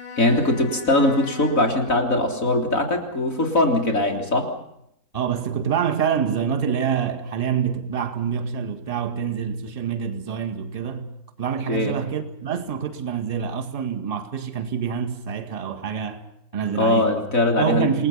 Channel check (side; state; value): right; late; 4.0 ms